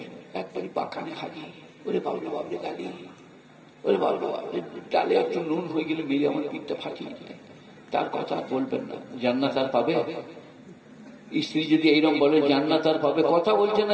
একবারই পাখানে খালি, ওরে বাবরে বাবরে গালি, ওরে বাবরে বাবরে ডালে একটু নুন হয়ে গেলে মেরে আমার পিঠটা ফাটিয়ে দেয়। তার কথা বলবেন না, জান্নাত আর পাবে? স্ত্রী যদি এইরকম বলে জান্নাত আর পাবে, কথা বলছে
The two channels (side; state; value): both; identical; correlation 1.00